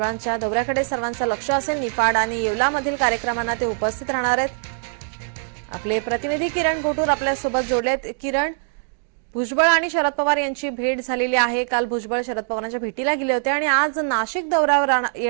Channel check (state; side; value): silent; left; digital silence